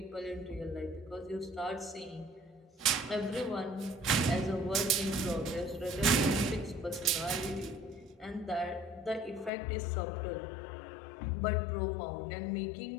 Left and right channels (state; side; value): drops out; right; at 9.5 s